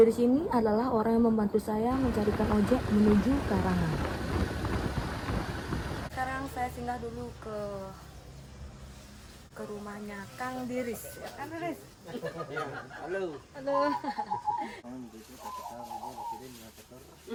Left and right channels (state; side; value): identical; both; correlation 1.00